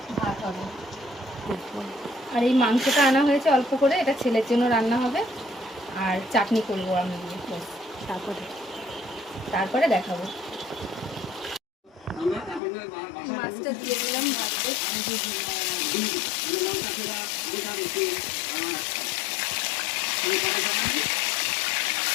ভাত হবে। আর এই মাংসটা আনা হয়েছে অল্প করে, এটা ছেলের জন্য রান্না হবে আর চাটনি করবো আমি দিয়ে। তারপরে দেখাবো। মাছটা দিয়ে দিলাম ভাতে।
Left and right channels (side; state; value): right; drops out; at 12.6 s